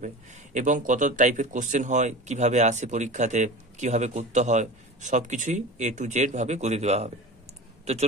এবং কত টাইপের কোশ্চেন হয়, কিভাবে আসে পরীক্ষাতে, কিভাবে করতে হয়, সবকিছুই A to Z ভাবে করে দেওয়া হবে। তো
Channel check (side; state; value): both; normal; correlation 0.32